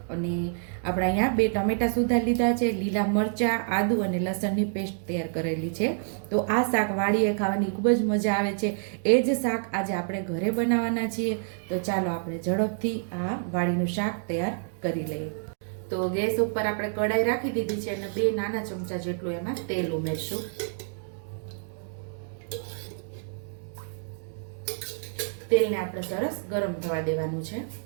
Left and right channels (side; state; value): left; silent; digital silence